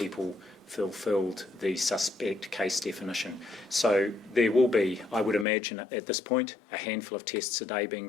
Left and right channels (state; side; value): drops out; right; at 5.5 s